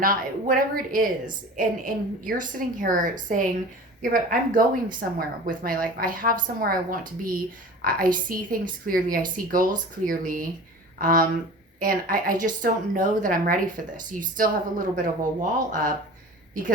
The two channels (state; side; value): normal; both; correlation 0.38